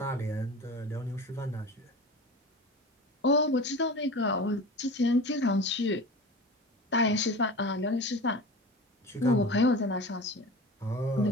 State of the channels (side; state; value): both; normal; correlation 0.34